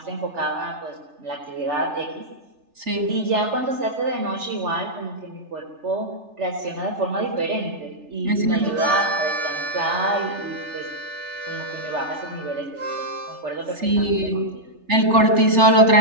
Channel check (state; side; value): late; left; 3.4 ms